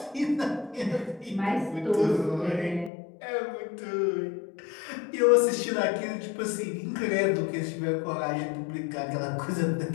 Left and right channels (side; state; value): right; drops out; at 2.9 s